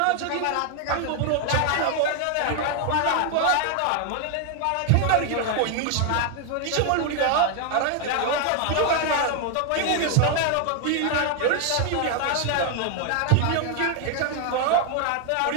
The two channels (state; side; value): different; both; correlation 0.00